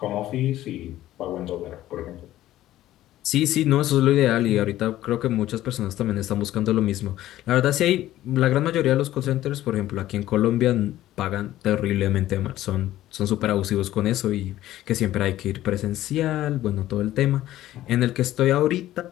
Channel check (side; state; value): right; quieter; 14.2 dB